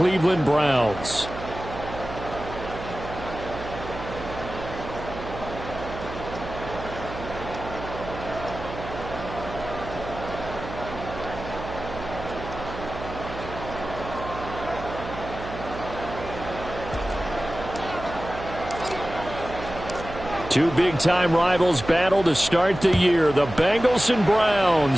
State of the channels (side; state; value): right; noise; hum, 10 dB below the sound